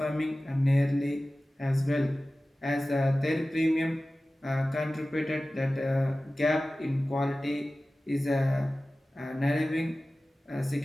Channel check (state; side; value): normal; both; correlation 0.96